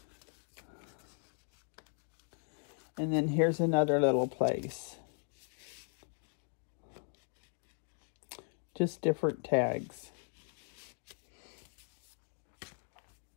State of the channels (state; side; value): silent; right; 53 dB below the other